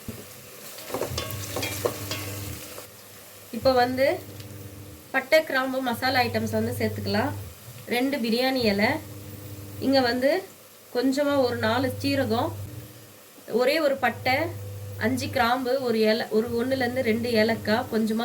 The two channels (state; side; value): identical; both; correlation 1.00